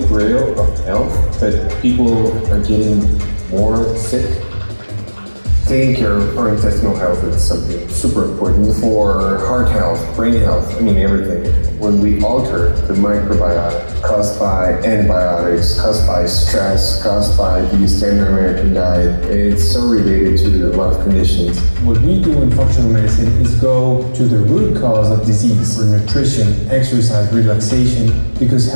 grail of health, but people are getting more sick. Taking care of our intestinal health is something super important for heart health, brain health, everything. When we alter the microbiota caused by antibiotics, caused by stress, caused by the standard American diet, it's so related to a lot of conditions. What we do in functional medicine is go to the root cause of disease for nutrition, exercise, relaxation, because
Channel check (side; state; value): both; inverted; correlation -1.00